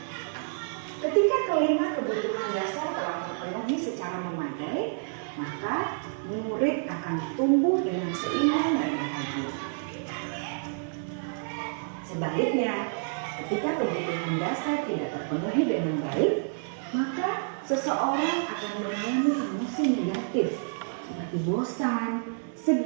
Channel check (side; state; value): left; silent; digital silence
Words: Ketika kelima kebutuhan dasar telah terpenuhi secara memadai, maka murid akan tumbuh dengan seimbang dan bahagia. Sebaliknya, ketika kebutuhan dasar tidak terpenuhi dengan baik, maka seseorang akan mengalami emosi negatif seperti bosan,